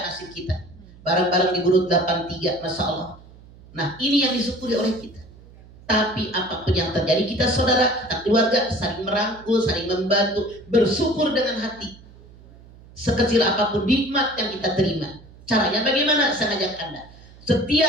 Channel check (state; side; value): noise; right; hum, 22 dB below the sound